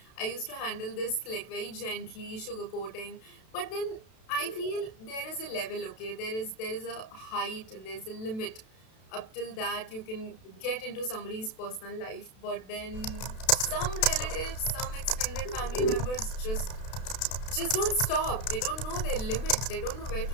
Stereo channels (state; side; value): late; right; 32 ms